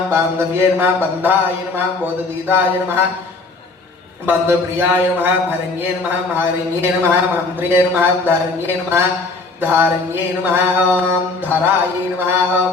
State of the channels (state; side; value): quieter; right; 3.5 dB